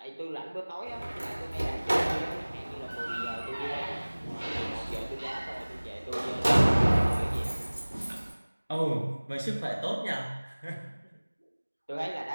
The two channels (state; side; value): inverted; both; correlation -1.00